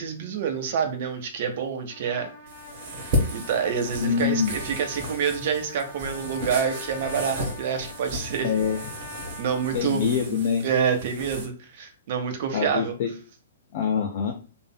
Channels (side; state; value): both; inverted; correlation -0.39